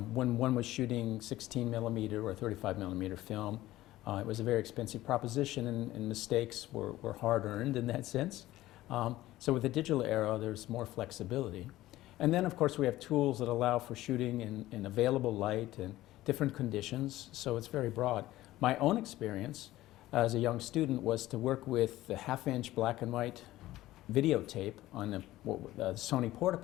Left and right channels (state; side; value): quieter; right; 16.0 dB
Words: When one was shooting 16 millimeter or 35 millimeter film, it was a very expensive proposition, and mistakes were hard-earned in that sense. So with the digital era, there's more flexibility. And then, of course, we have tools that allow for shooting in available light and different conditions, so it's very broad. My own experience as a young student was to work with the half-inch black and white videotape on the Sony